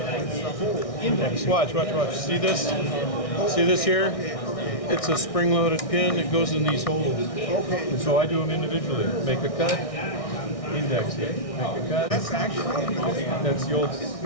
It's the whole. Watch. See this? See this here? It's a spring-loaded pin. It goes in these holes. Okay. And so I do them individually. Make a cut, index it. Make a cut. That's actually. That's the old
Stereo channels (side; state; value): right; late; 1.6 ms